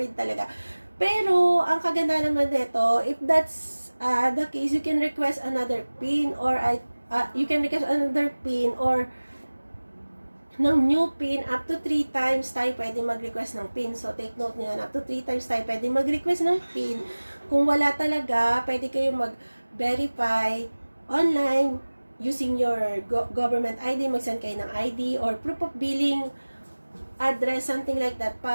talaga. Pero ang kaganda naman nito, if that's the case, you can request another PIN or ng new PIN. Up to 3 times tayo pwede mag-request ng PIN. So, take note nyo yan. Up to 3 times tayo pwede mag-request ng PIN. Kung wala talaga, pwede kayo mag-verify online using your government ID. Mag-send kayo ng ID or proof of billing address, something like that,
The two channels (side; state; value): both; inverted; correlation -1.00